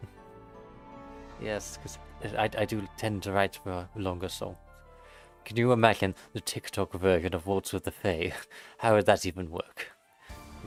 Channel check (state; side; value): identical; both; correlation 1.00